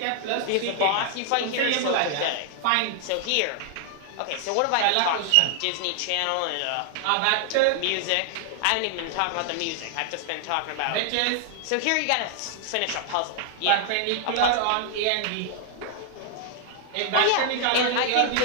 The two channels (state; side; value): different; both; correlation 0.00